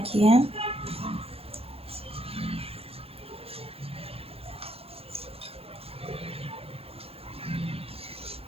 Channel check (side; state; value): left; late; 0.28 ms